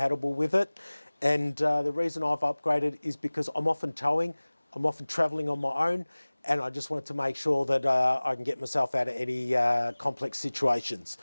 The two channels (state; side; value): inverted; both; correlation -1.00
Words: with it. And the reason I've upgraded is because I'm often towing, I'm often traveling on my own, and I just wanted to make sure that I can get myself out of any complex situations.